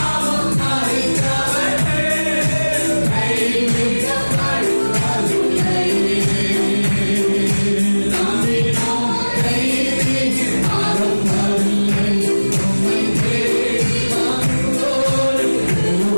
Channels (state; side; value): inverted; both; correlation -1.00